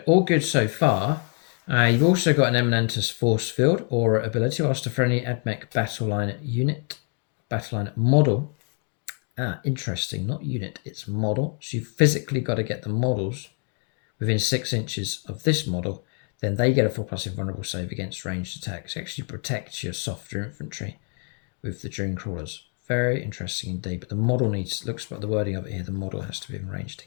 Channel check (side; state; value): right; quieter; 39.9 dB